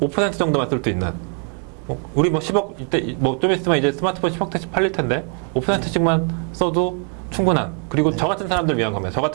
정도만 쓸 수 있는. 우리 뭐 10억 이때 뭐 좀 있으면 이제 스마트폰 10억 대씩 팔릴 텐데 5%씩만 써도 충분한. 그리고 저 같은 사람들 위한 겁니다. 저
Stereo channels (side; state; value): left; quieter; 34.8 dB